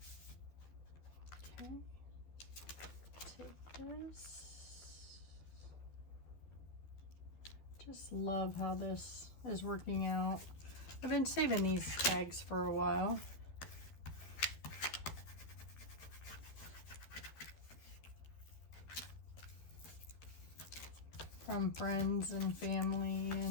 Okay, take this. Just love how this is working out. I've been saving these tags for a while. From friends and family,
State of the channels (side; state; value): right; late; 12 ms